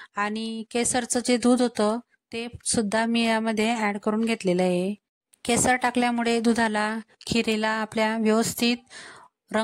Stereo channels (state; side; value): identical; both; correlation 1.00